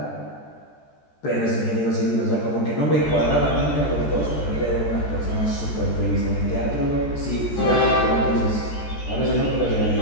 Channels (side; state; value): right; late; 14 ms